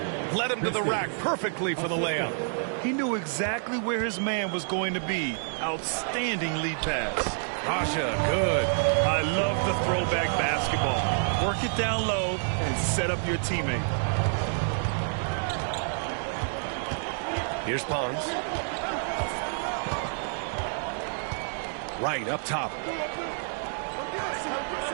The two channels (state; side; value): silent; left; digital silence